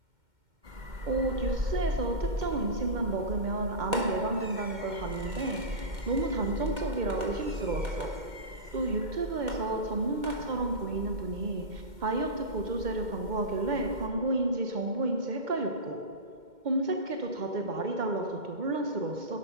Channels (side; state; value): left; late; 2.1 ms